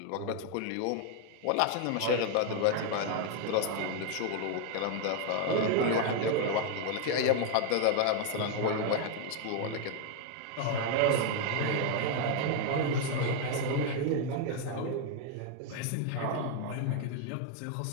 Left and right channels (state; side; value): different; both; correlation 0.01